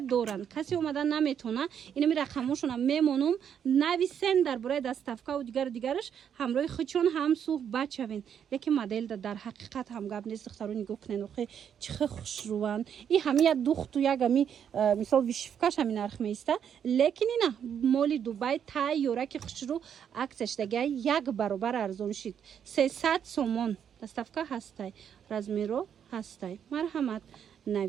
Касе омада наметона инами рақамошона мемонум нависен дар бораи доставка ва дигараш ҳамроҳи хучон ҳам суҳбат шавен. Лекин моделда дар ҳақиқат ҳам гап нест. Духтаро нигоҳ кунен охе чихе хушруванд. И ҳами як духту як ами мисол вишивкаш ҳами нарх меиста. Лекин ина моли Дубай тай ёраки хушру аксияш дага як баробар арзон шид. 300 сомон доставка ҳастай. Размеро ҳастай. Марҳамат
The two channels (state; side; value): quieter; left; 8.4 dB